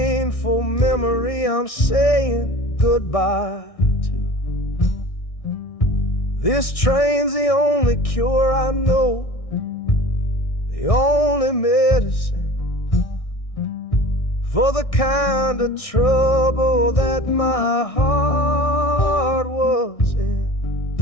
memory I'm saying goodbye to. This train's the only cure I know, the only medicine for the kind of trouble that my heart was in.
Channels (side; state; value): right; late; 1.6 ms